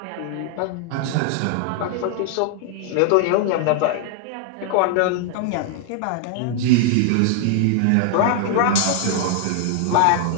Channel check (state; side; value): different; both; correlation 0.00